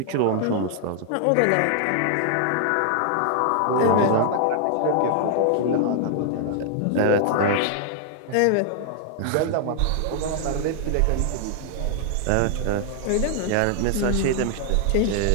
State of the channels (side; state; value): both; different; correlation -0.01